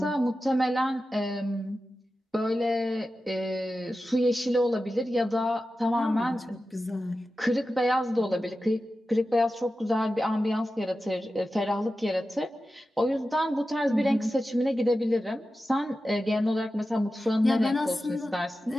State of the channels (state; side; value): normal; both; correlation 0.93